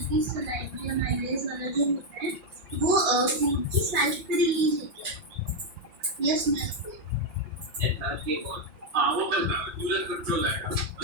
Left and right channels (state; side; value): late; left; 5.8 ms